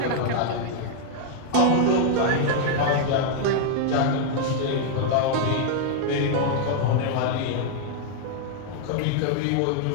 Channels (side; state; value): both; different; correlation 0.00